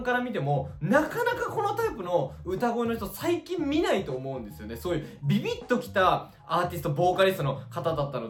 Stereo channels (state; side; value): identical; both; correlation 1.00